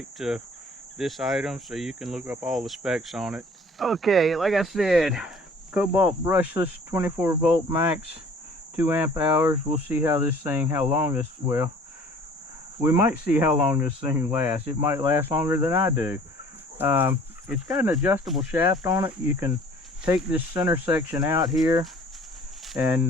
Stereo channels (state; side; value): normal; both; correlation 0.52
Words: to this item so you can look up all the specs on it. Okay, like I said, Kobalt brushless 24 volt max, 2 amp hours. We'll see how long this, well, we might see how long this thing lasts. It might last longer than I do. It's got an adjustable shaft on it. You can take this center section out here and